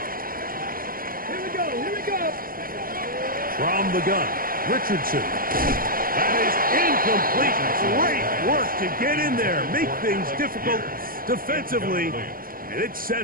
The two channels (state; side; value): late; left; 0.42 ms